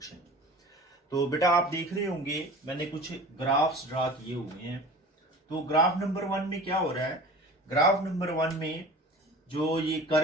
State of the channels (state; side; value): normal; both; correlation 0.39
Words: तो बेटा आप देख रहे होंगे मैंने कुछ graphs draw किए हुए हैं। तो ग्राफ नंबर 1 में क्या हो रहा है, ग्राफ नंबर 1 में जो ये